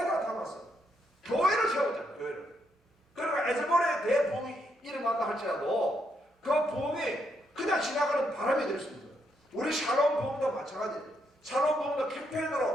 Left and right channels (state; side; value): normal; both; correlation 0.77